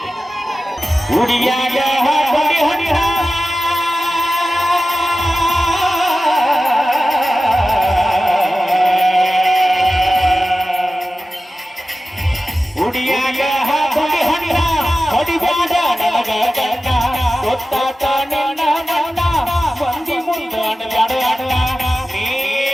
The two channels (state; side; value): normal; both; correlation 0.94